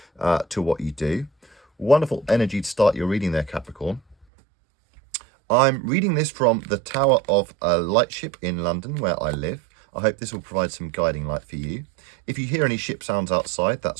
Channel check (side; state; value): left; drops out; at 4.2 s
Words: to what you do? Wonderful energy to start your reading there, Capricorn. I'm reading this from the Tower of Lightship in London, where I live. I hope this will provide some guiding light for you. If you hear any ship sounds outside,